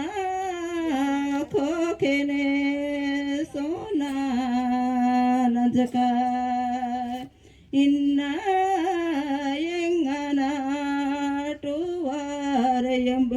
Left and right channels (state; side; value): identical; both; correlation 1.00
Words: खोखने सोना नजका, इन्ना यंगना टुवार